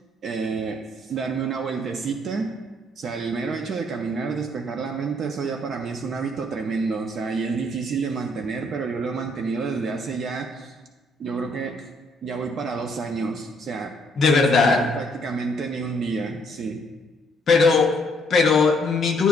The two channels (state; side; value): normal; both; correlation 0.67